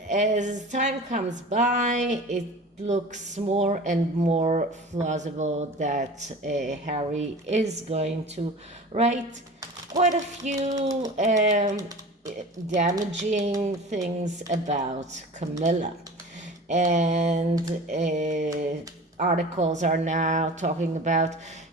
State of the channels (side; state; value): both; normal; correlation 0.38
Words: time comes by it looks more and more plausible that Harry is going to write quite a few damaging things about Camilla. And articles are now talking about